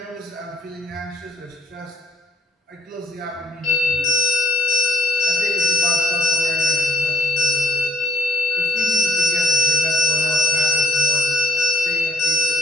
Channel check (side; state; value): both; normal; correlation 0.56